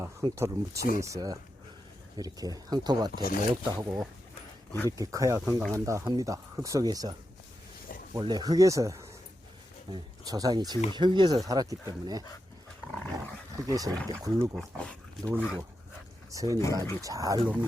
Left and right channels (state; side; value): normal; both; correlation 0.87